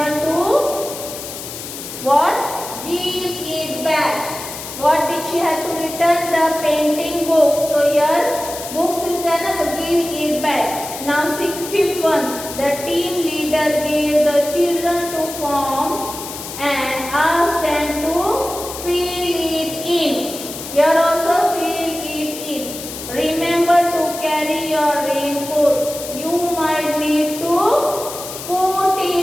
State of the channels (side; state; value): left; noise; hiss, 10 dB below the sound